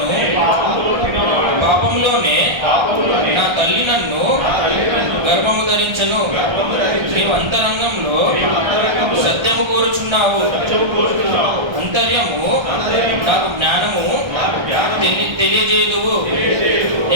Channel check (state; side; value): late; left; 1.3 ms